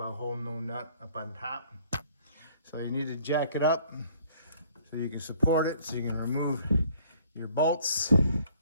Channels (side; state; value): both; inverted; correlation -0.59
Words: holding no nut up on top. So you need to jack it up so you can support it, so you can remove your bolts.